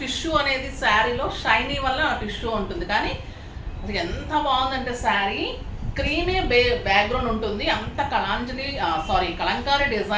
టిష్యూ అనేది శారీలో షైనీ వల్ల ఆ టిష్యూ ఉంటుంది, కానీ అది ఎంత బాగుందంటే శారీ క్రీమే బ్యాక్గ్రౌండ్ ఉంటుంది, అంత కలంకారీ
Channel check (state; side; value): identical; both; correlation 1.00